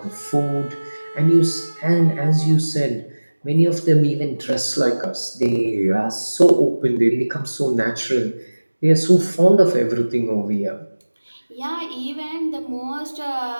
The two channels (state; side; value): inverted; both; correlation -1.00